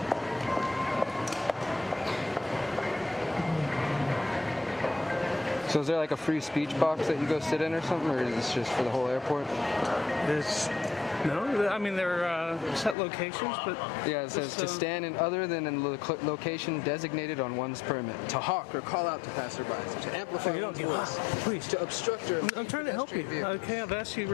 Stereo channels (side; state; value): right; drops out; at 13.0 s